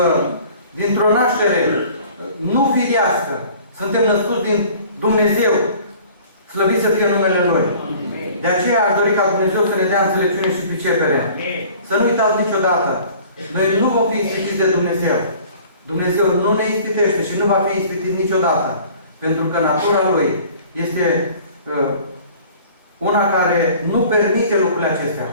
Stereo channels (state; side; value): inverted; both; correlation -0.49